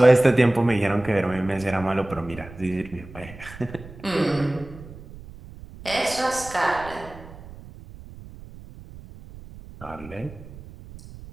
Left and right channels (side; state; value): right; noise; rumble, 17 dB below the sound